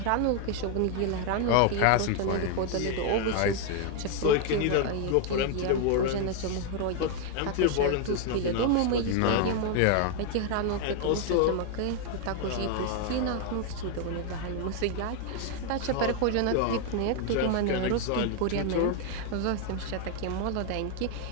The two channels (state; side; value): different; both; correlation 0.00